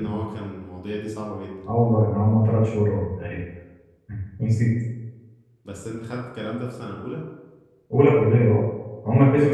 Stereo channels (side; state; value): both; identical; correlation 1.00